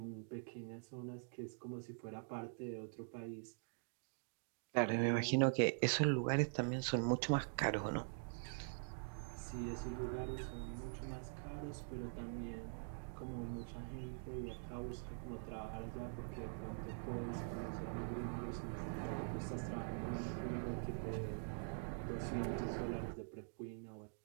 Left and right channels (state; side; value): silent; left; digital silence